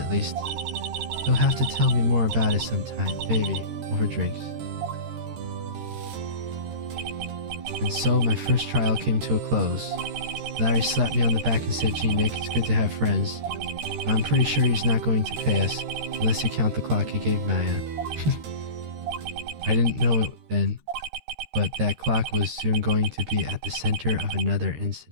least. You'll have to tell me more about it sometime, maybe, over drinks. And so my first trial came to a close. Larry slapped me on the back and said, "Gee, Nick, it's good to have friends. I'm pretty sure he's not going to pay us, unless you count the clock he gave Maya." I didn't know it then, but that clock was soon going to be at the center of another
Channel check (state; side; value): late; left; 13 ms